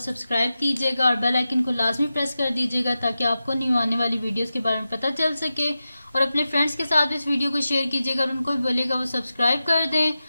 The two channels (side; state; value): both; inverted; correlation -0.92